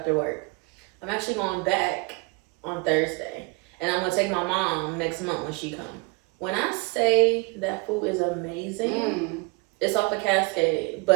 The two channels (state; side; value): quieter; left; 28.1 dB